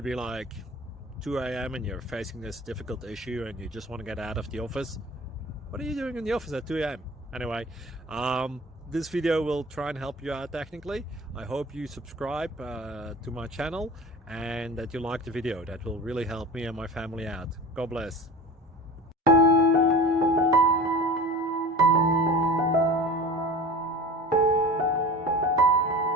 be like 2 a.m. and you're facing this difficult issue and you just want to get out of the office. What are you doing in the office at 2 a.m.? Anyway, this video will try and help you out technically. I hope you subscribe to my channel and that you like the video. That will really help me and my family out. God bless.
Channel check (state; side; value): normal; both; correlation 0.36